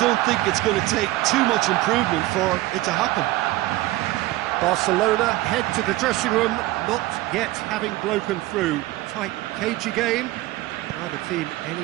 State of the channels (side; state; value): left; quieter; 17.6 dB